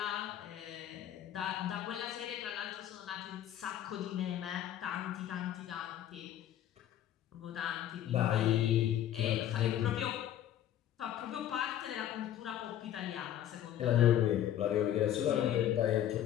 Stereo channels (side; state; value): right; quieter; 11.4 dB